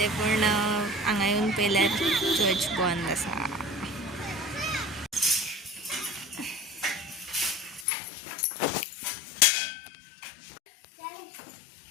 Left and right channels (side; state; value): right; drops out; at 7.9 s